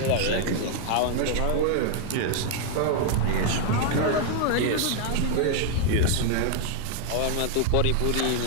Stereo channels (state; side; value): different; both; correlation 0.00